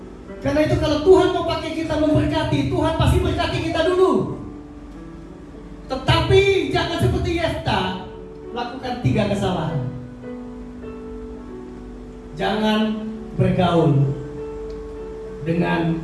Karena itu kalau Tuhan mau pakai kita memberkati, Tuhan pasti berkati kita dulu. Tetapi jangan seperti Yefta, lakukan 3 kesalahan. Jangan bergaul dengan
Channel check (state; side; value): identical; both; correlation 1.00